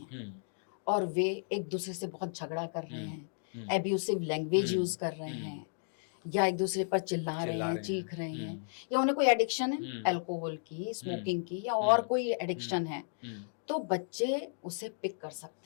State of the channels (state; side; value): silent; right; digital silence